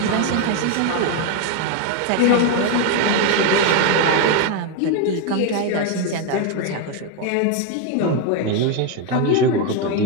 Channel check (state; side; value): different; both; correlation 0.02